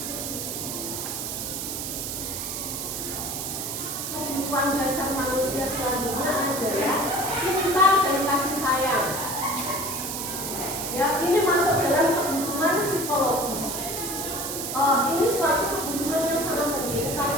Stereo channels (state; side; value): noise; right; hiss, 4 dB below the sound